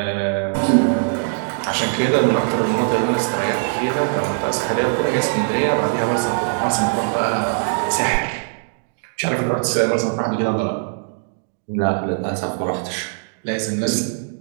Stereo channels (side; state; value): left; silent; digital silence